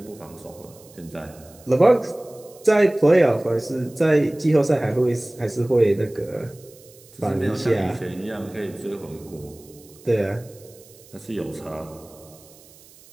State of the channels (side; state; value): right; noise; hiss, 24 dB below the sound